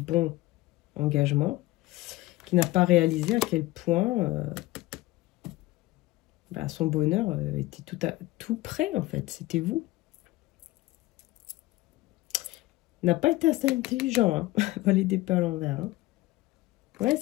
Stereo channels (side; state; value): right; quieter; 18.4 dB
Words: engagement. Qui n'a pas réalisé à quel point... son bonheur était tout près, en fait. C'était vous. N'a pas été assez intelligent, valet d'épée à l'envers. Ouais,